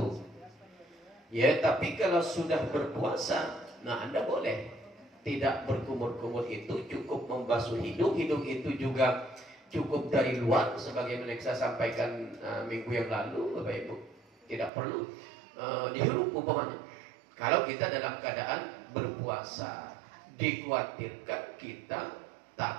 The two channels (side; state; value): left; drops out; at 14.7 s